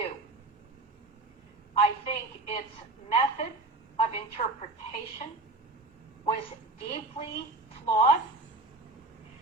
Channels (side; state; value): left; quieter; 3.1 dB